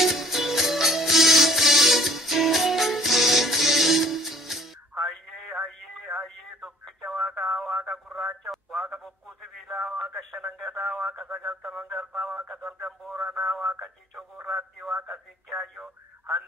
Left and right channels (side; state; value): both; normal; correlation 0.52